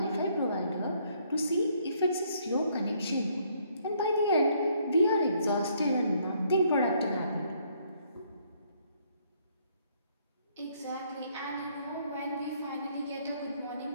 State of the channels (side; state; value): both; inverted; correlation -0.67